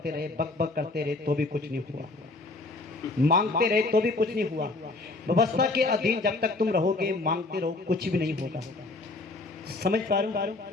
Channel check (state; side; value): quieter; right; 3.2 dB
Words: रहे, बक बक करते रहे, तो भी कुछ नहीं हुआ। मांगते रहे तो भी कुछ नहीं हुआ। व्यवस्था के अधीन जब तक तुम रहोगे, मांगते रहो, कुछ भी नहीं होगा। समझ पा रहे हो?